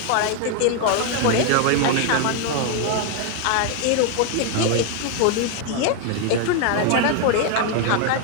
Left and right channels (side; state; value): both; different; correlation 0.01